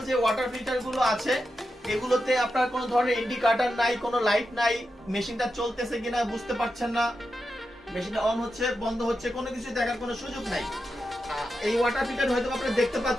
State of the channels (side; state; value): both; normal; correlation 0.88